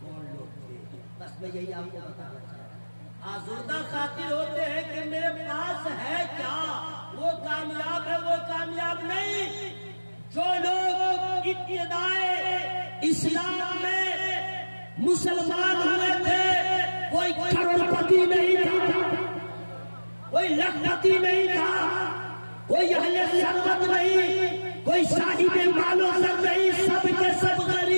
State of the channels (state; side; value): inverted; both; correlation -1.00